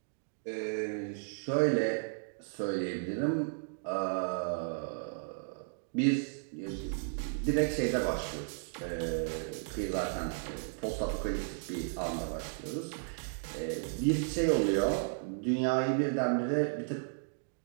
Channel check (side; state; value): left; silent; digital silence